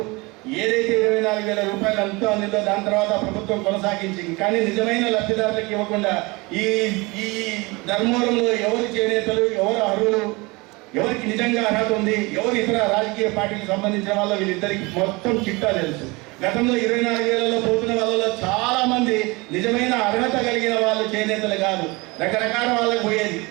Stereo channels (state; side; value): quieter; left; 24.9 dB